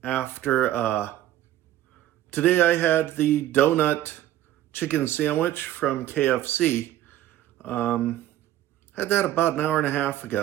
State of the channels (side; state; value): left; quieter; 13.3 dB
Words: after today I had the donut chicken sandwich from KFC. Had that about an hour and a half